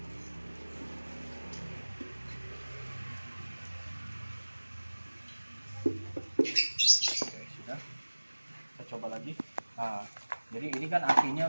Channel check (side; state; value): both; inverted; correlation -1.00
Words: Coba lagi. Nah, jadi ini kan